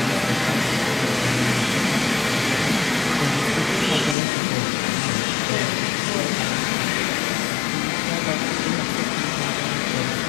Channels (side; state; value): right; drops out; at 4.2 s